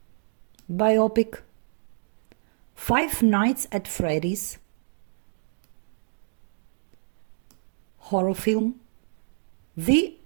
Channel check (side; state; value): left; silent; digital silence